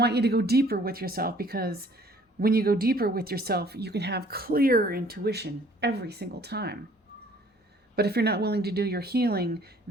you to go deeper with yourself, because when you go deeper with yourself, you can have clear intuition every single time. But if you're not willing to do your healing,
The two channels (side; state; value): both; normal; correlation 0.56